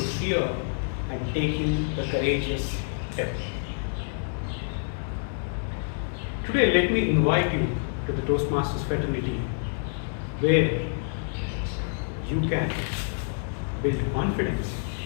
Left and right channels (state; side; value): silent; right; digital silence